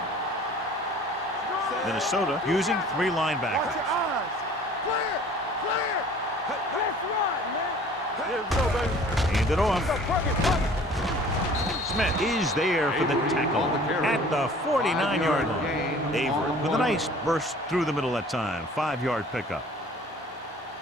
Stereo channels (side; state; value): both; normal; correlation 0.49